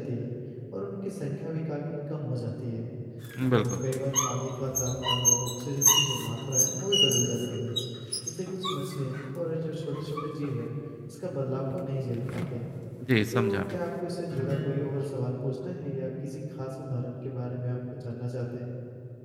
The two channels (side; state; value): both; identical; correlation 1.00